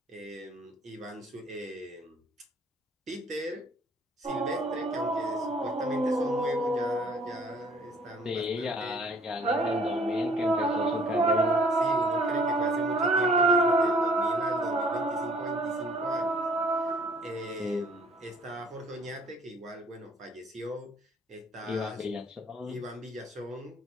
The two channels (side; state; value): both; normal; correlation 0.57